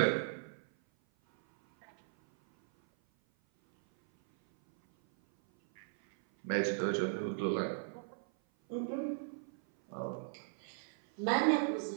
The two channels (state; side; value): silent; left; 53 dB below the other